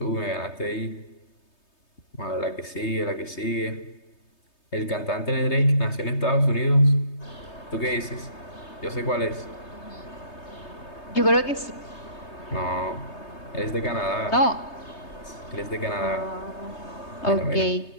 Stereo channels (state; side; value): late; right; 3.2 ms